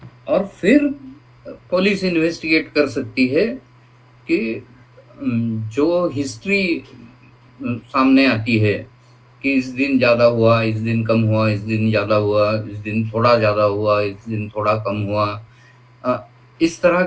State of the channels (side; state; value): both; identical; correlation 1.00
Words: और फिर पुलिस इन्वेस्टिगेट कर सकती है कि जो हिस्ट्री सामने आती है कि इस दिन ज्यादा हुआ, इस दिन कम हुआ, इस दिन ज्यादा हुआ, इस दिन थोड़ा ज्यादा हुआ, इस दिन थोड़ा कम हुआ, इस तरह